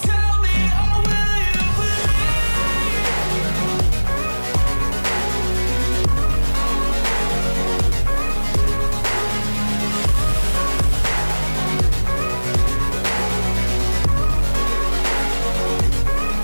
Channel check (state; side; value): inverted; both; correlation -1.00